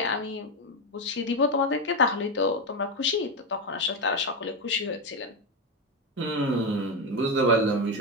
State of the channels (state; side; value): normal; both; correlation 0.10